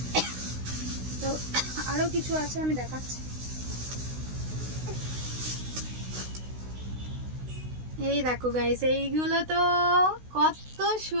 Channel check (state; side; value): late; left; 16 ms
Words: তো আরো কিছু আছে, আমি দেখাচ্ছি। এই দেখো গাইস, এইগুলো তো কত